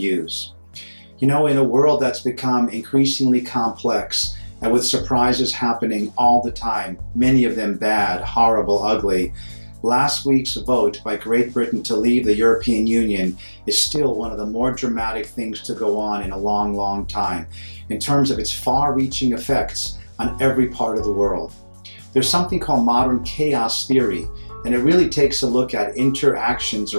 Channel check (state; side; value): inverted; both; correlation -1.00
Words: You know, in a world that's become increasingly complex and with surprises happening all the time, many of them bad, horrible, ugly, last week's vote by Great Britain to leave the European Union is still one of the more dramatic things to go on in a long, long time in terms of its far-reaching effects on every part of the world. There's something called modern chaos theory, and it really takes a look at interactions